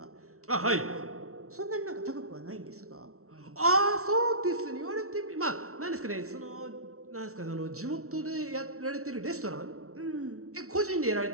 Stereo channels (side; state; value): left; late; 0.63 ms